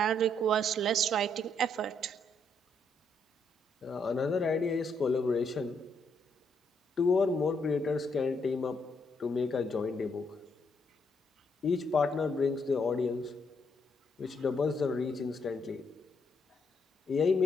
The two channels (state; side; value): normal; both; correlation 0.74